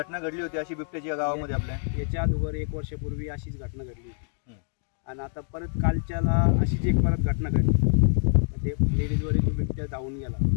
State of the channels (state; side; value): silent; right; 61 dB below the other